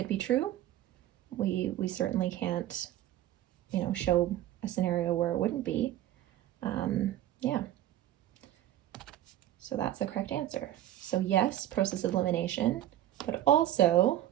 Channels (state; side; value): quieter; left; 13.2 dB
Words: be true. We certainly can't, show a scenario where it wouldn't be. Yeah. So that's the correct answer. So yes, process of elimination, but also